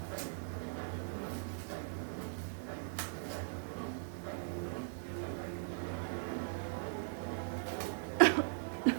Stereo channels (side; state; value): left; silent; digital silence